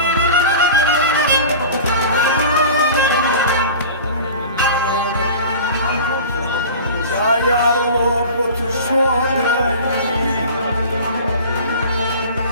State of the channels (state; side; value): inverted; both; correlation -0.37